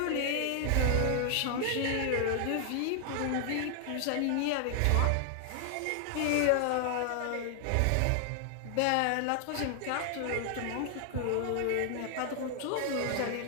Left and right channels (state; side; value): different; both; correlation 0.00